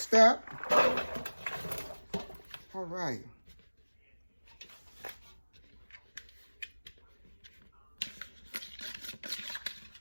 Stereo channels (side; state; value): both; inverted; correlation -1.00